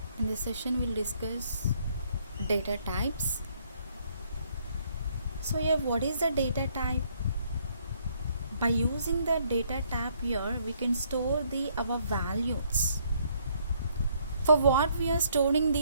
In this session we'll discuss data types. So here, what is the data type? By using the data type here, we can store our values. For what we are storing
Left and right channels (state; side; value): inverted; both; correlation -0.68